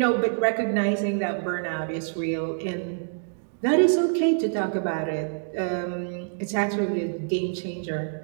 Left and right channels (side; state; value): left; silent; digital silence